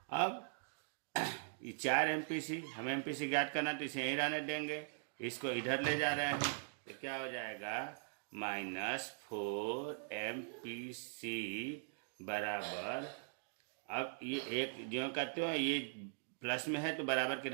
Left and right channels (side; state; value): left; silent; digital silence